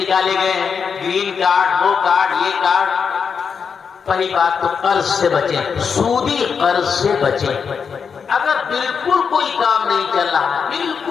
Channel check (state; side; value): quieter; right; 6.2 dB